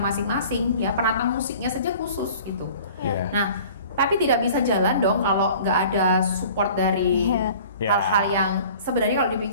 penata musiknya saja khusus gitu. Nah, tapi tidak bisa jalan dong kalau nggak ada support dari hal-hal yang sebenarnya kalau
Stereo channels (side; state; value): both; inverted; correlation -0.46